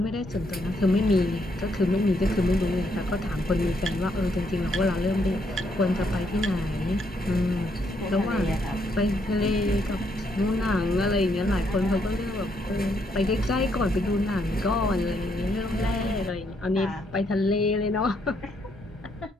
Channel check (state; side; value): normal; both; correlation 0.74